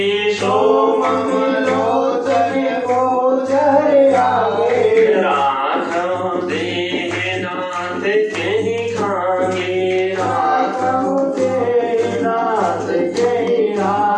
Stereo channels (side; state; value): both; identical; correlation 1.00